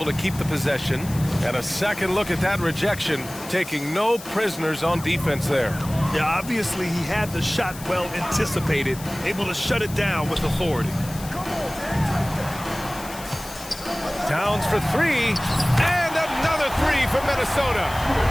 to keep the possession. And a second look at that rejection, taking no prisoners on defense there. Yeah, obviously he had the shot well anticipated, able to shut it down with authority. Towns for three, and another three for Minnesota.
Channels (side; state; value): left; noise; hiss, 15 dB below the sound